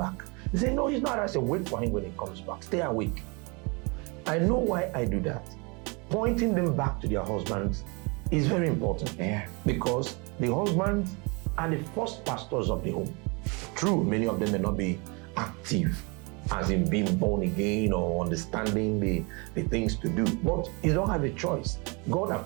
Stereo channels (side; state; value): left; quieter; 30.1 dB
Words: They say, no, he's not. I say, wait for him when he comes back. Stay awake. I know why I do that. Pointing them back to their husbands is very important. Yeah. Because the husbands are the first pastors of the home. True, many of them may not be active, as in being born again or understanding the things to do. But you don't have a choice. God